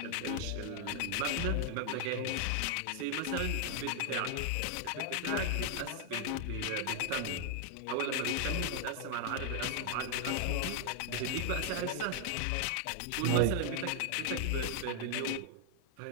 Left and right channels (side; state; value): both; different; correlation 0.00